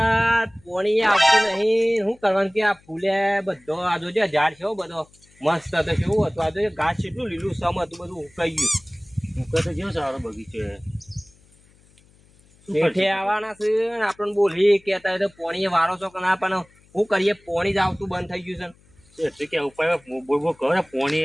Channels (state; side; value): noise; left; hum, 30 dB below the sound